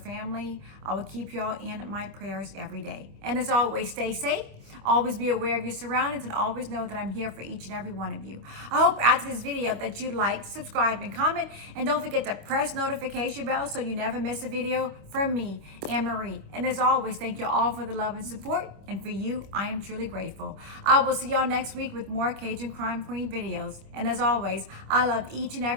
I will keep y'all in my prayers every day. And as always, stay safe. Always be aware of your surroundings and always know that I'm here for each and every one of you. I hope after this video that you like, subscribe, and comment. And don't forget to press notification bell so you never miss a video from me, Anne-Marie. And as always, thank you all for the love and support. And for you, I am truly grateful. I will see y'all next week with more Cajun Crime Queen videos. And as always, I love each and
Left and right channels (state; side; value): late; left; 26 ms